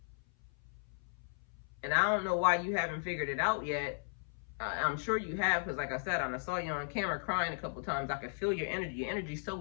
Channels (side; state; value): right; silent; 54 dB below the other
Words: And I don't know why you haven't figured it out yet. I'm sure you have, because like I said, I saw you on camera crying a couple times. I could feel your energy. Your energy's